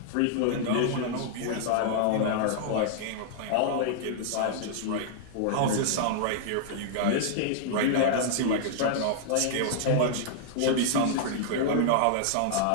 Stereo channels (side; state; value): both; different; correlation -0.01